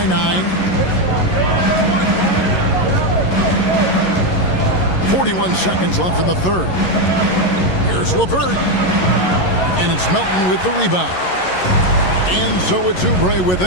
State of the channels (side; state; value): right; late; 11 ms